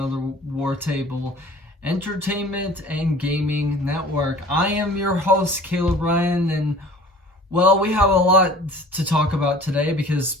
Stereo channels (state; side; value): normal; both; correlation 0.47